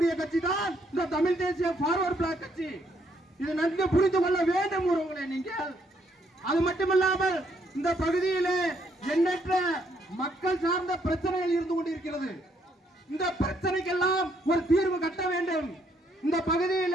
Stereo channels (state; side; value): normal; both; correlation 0.71